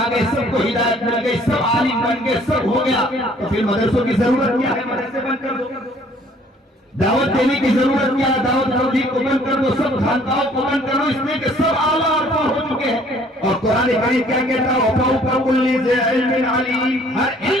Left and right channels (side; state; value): both; normal; correlation 0.58